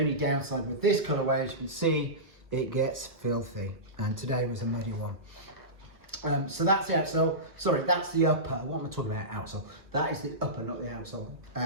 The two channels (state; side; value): late; left; 1.1 ms